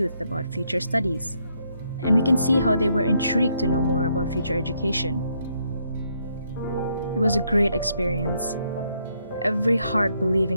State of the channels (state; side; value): inverted; both; correlation -0.74